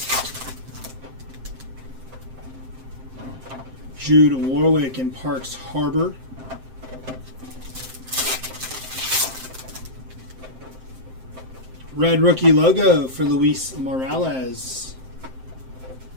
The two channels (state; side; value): late; left; 7.7 ms